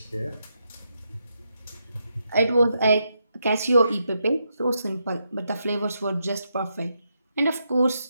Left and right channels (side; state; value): both; inverted; correlation -0.82